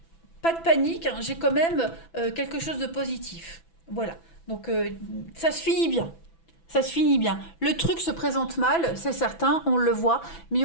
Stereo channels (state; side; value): late; right; 6.0 ms